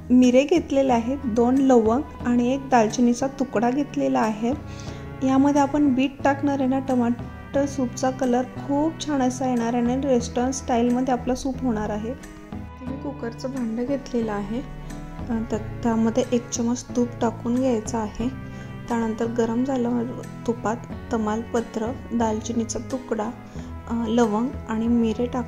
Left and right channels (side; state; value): both; identical; correlation 1.00